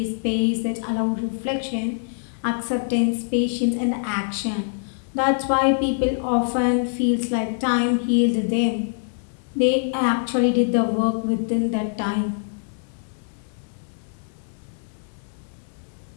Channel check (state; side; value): silent; right; digital silence